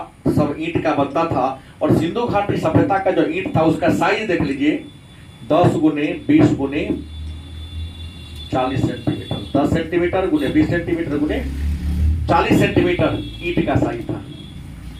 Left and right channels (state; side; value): identical; both; correlation 1.00